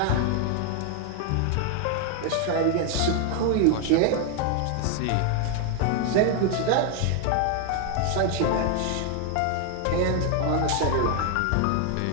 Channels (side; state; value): both; different; correlation 0.00